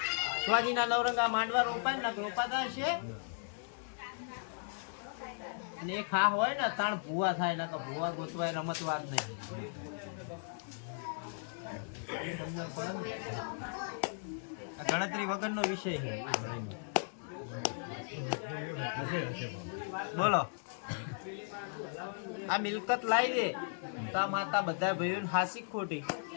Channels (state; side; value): silent; right; digital silence